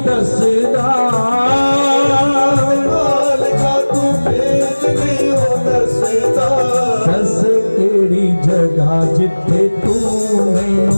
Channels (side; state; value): both; inverted; correlation -1.00